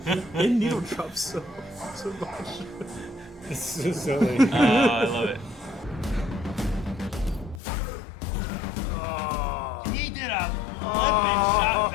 They needle drop so much. It's so silly. Oh, I love it. He did a flippin' shot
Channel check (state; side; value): drops out; right; at 7.6 s